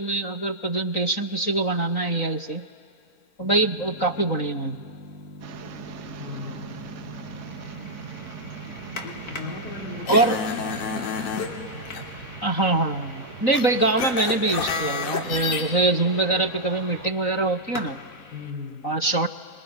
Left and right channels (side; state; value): right; late; 3.9 ms